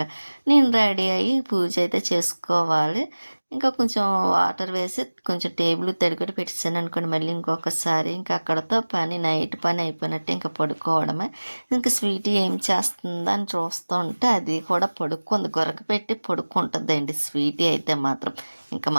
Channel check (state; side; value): inverted; both; correlation -1.00